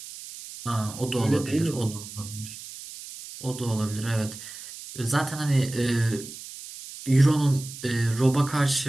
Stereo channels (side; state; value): right; noise; hiss, 13 dB below the sound